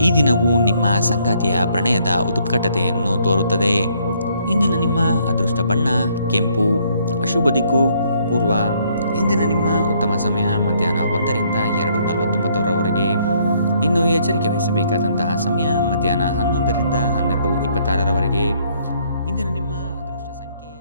ಈ ದಿನವು ನಿಮ್ಮ ಸಂಗಾತಿಯ ಪ್ರಣಯದ ಉತ್ಕಟತೆಯನ್ನು ತೋರುತ್ತದೆ. ಇಂದಿನ ನಿಮ್ಮ ಅದೃಷ್ಟ ಬಣ್ಣ ಕೆಂಪು. ಅಶುಭ ದಿಕ್ಕು ಪೂರ್ವ. ಇಂದಿನ ನಿಮ್ಮ ಉತ್ತಮ ಸಮಯ ಮಧ್ಯಾಹ್ನ 1ರಿಂದ 2:49ರವರೆಗೆ. ಇನ್ನು ಎಚ್ಚರಿಕೆ ವಹಿಸಬೇಕಾದಂತಹ ಸಮಯ ಮಧ್ಯಾಹ್ನ 11ರಿಂದ 12:26ರವರೆಗೆ.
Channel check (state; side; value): inverted; both; correlation -0.67